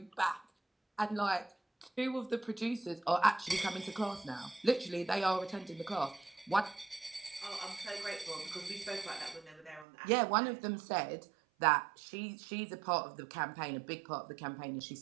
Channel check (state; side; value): drops out; left; at 9.9 s